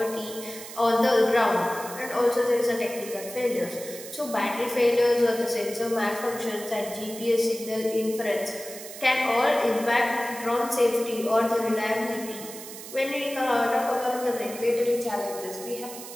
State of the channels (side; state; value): right; noise; hiss, 12 dB below the sound